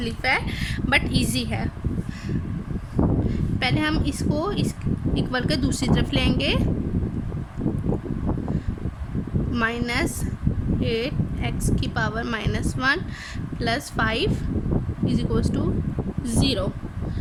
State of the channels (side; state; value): both; identical; correlation 1.00